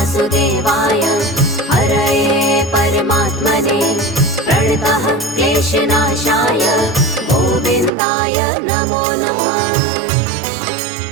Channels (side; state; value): left; drops out; at 7.9 s